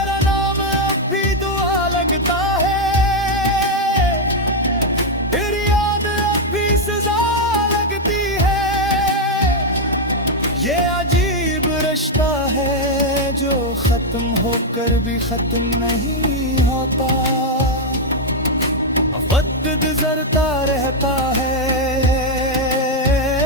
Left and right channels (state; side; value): normal; both; correlation 0.01